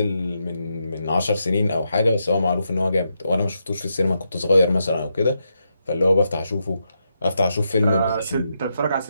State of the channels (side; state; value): both; inverted; correlation -0.83